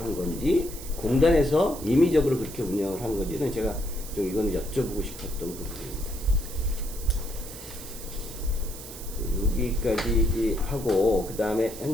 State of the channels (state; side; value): noise; right; hiss, 13 dB below the sound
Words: 건지 공단에서 임의적으로 그렇게 운영을 한 건지는 제가 좀 이거는 여쭤보고 싶었던 부분입니다. 여기까지 하고, 그 다음에